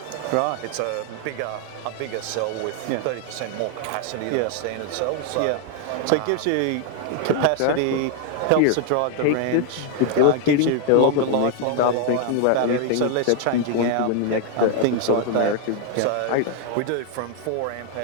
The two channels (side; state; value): both; different; correlation 0.00